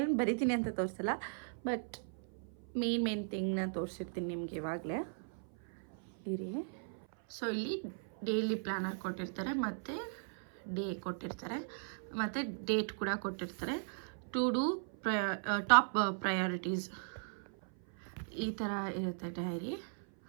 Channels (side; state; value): left; silent; 53 dB below the other